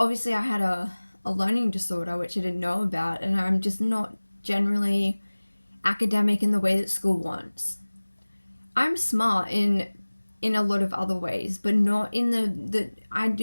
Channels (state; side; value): inverted; both; correlation -1.00